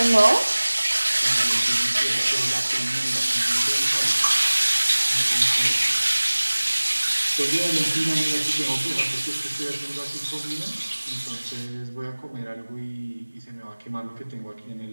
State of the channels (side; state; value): both; inverted; correlation -1.00